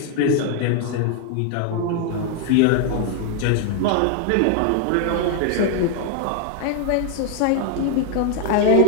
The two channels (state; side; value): different; both; correlation 0.00